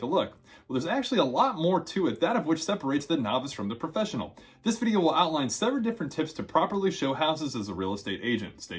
a look. Well, there's actually a lot more to it, that of which separates the novice from the professional. This video will outline several different tips to properly show houses as a real estate agent.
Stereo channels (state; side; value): identical; both; correlation 1.00